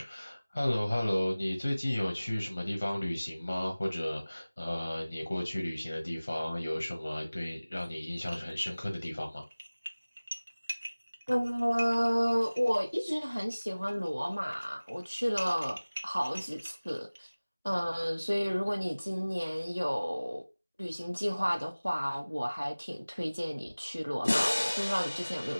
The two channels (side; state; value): both; inverted; correlation -0.99